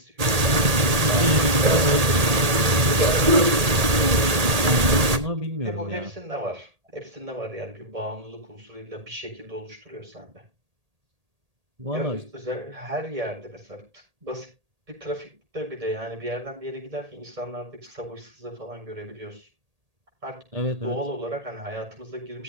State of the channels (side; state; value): left; late; 1.8 ms